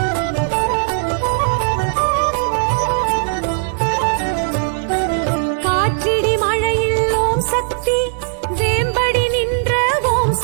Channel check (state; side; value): silent; left; digital silence